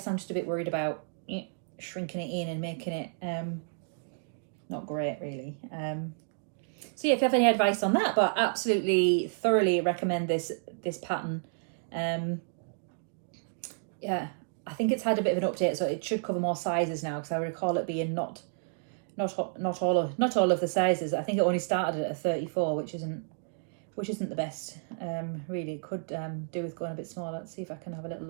I'm just a bit worried about shrinking it in and making it not great really. So yeah, if you have any advice on that, but absolutely thoroughly recommend this pattern. Yeah, I think it's had a bit of an update, so it should cover more sizes now, because I recall it being not all of the sizes. I think it only started at a 34, which isn't the best. Really, it could do with going a bit smaller. Let's see if I can have a little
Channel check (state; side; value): silent; left; digital silence